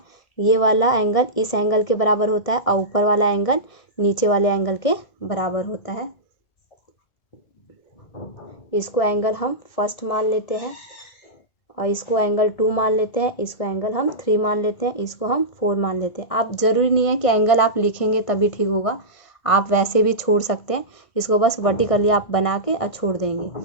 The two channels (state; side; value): late; right; 2.0 ms